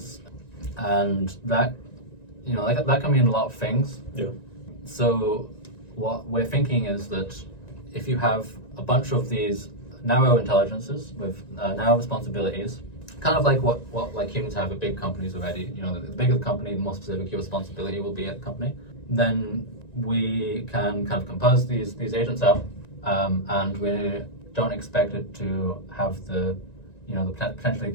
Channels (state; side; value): late; right; 1.9 ms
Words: and that that can mean a lot of things. Yeah. So what we're thinking is that if you have a bunch of these narrow intelligences with narrow responsibilities, kind of like what like humans have at big companies already. The bigger the company, the more specific your responsibility will be at the company. Then we can kind of compose these agents out, and we don't expect it to have the potentially